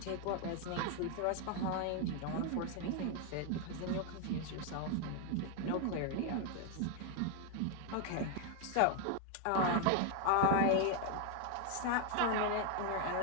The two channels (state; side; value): different; both; correlation 0.01